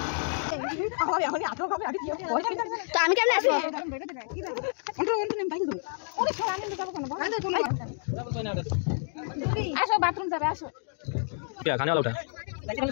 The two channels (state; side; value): silent; right; 58 dB below the other